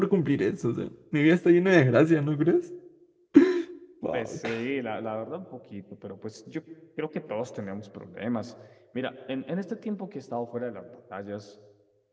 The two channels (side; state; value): both; identical; correlation 1.00